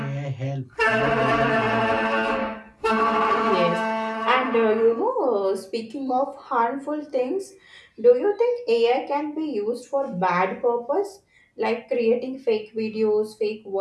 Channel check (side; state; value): both; identical; correlation 1.00